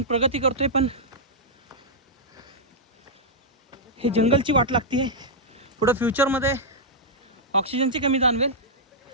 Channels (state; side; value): normal; both; correlation -0.09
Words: प्रगती करतोय पण हे जंगलची वाट लागते. पुढं फ्युचरमध्ये ऑक्सिजनची कमी जाणवेल